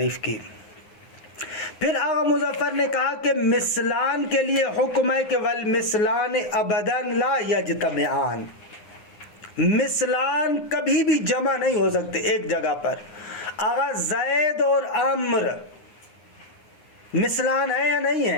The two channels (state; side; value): late; right; 9.7 ms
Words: کی. پھر آغا مظفر نے کہا کہ مثلان کے لیے حکم ہے کہ والمثلان ابداً لا یجتمعان. مثلان کبھی بھی جمع نہیں ہو سکتے ایک جگہ پر. آغا زید اور عمر مثلان ہے یا نہیں